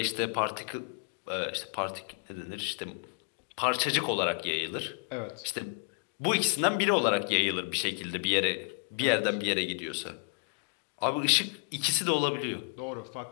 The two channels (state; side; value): quieter; right; 35.6 dB